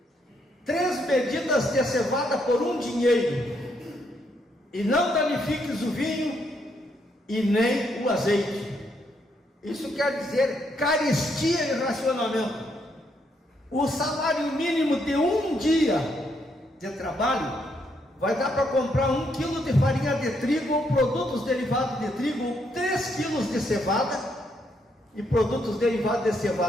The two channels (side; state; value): both; normal; correlation 0.75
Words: 3 medidas de cevada por 1 dinheiro, e não danifiques o vinho e nem o azeite. Isso quer dizer carestia e racionamento. O salário mínimo de 1 dia de trabalho vai dar para comprar 1 quilo de farinha de trigo ou produtos derivados de trigo, ou 3 quilos de cevada e produtos derivados de